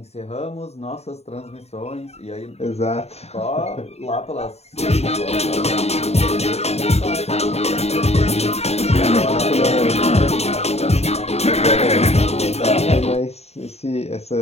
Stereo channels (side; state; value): right; late; 0.31 ms